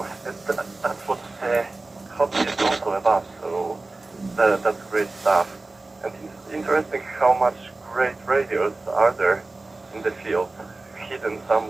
that's what hobby is also about. So that's great stuff. And it's interesting how much great radios are there in the field, hidden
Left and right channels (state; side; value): quieter; left; 3.2 dB